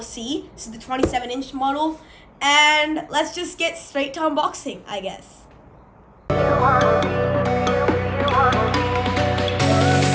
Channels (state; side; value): identical; both; correlation 1.00